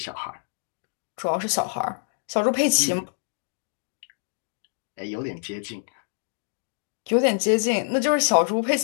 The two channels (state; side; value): silent; right; 61 dB below the other